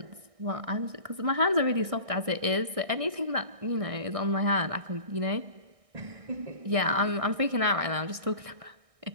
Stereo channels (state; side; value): late; left; 1.6 ms